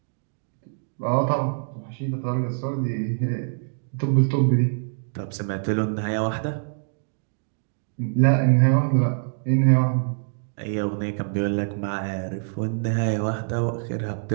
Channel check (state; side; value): silent; left; digital silence